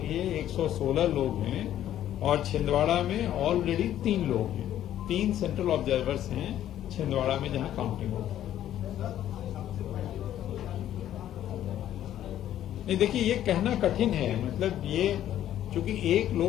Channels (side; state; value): right; quieter; 11.8 dB